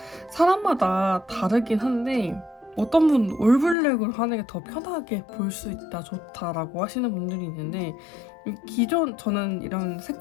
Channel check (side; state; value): right; drops out; at 3.8 s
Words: 사람마다 다르긴 한데 어떤 분 올블랙으로 하는 게 더 편하게 볼 수 있다, 좋다라고 하시는 분들이 있는데 기존 저는 이런